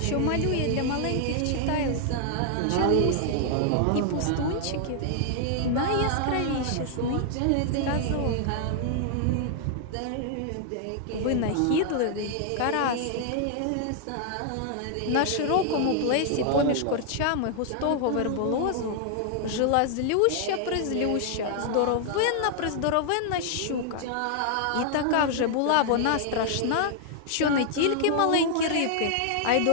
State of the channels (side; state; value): both; different; correlation 0.00